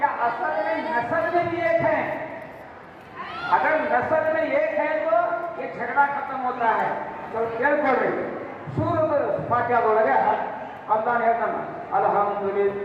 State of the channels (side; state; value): both; identical; correlation 1.00